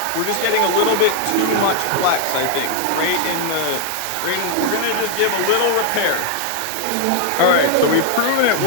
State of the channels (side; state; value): both; different; correlation 0.00